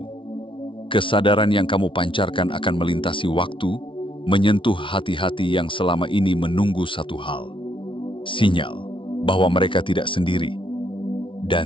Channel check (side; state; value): right; late; 0.25 ms